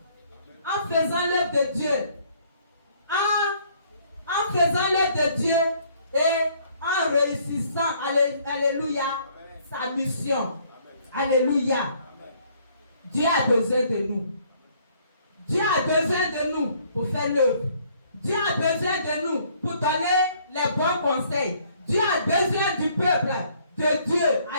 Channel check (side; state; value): both; inverted; correlation -0.63